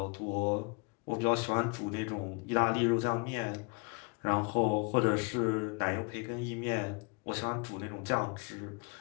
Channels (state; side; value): quieter; right; 31.5 dB